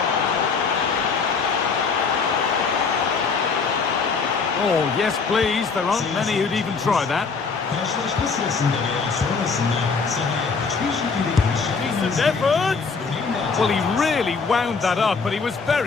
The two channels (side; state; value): right; quieter; 5.0 dB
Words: Oh, yes, please. There aren't many who'd even try that. Decent effort. Well, he really wound that up, but he was